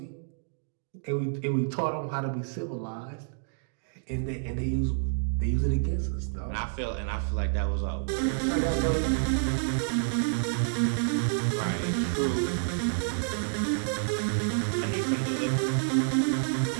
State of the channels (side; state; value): left; silent; digital silence